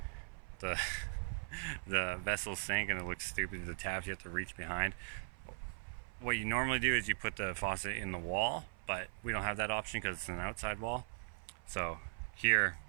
vessel sink and it looks stupid. The tabs you have to reach behind. What you normally do is you put the faucet in the wall, but we don't have that option because it's an outside wall. So here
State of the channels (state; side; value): silent; left; 51 dB below the other